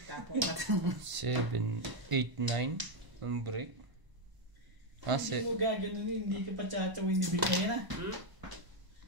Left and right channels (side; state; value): left; late; 1.0 ms